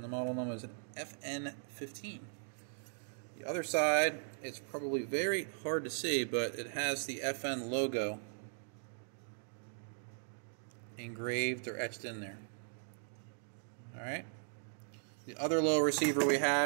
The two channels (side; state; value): left; silent; digital silence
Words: the model number is an FN15. The other side, it's probably very hard to see, but it has the FN logo engraved or etched in there. Alright. The other lower receiver we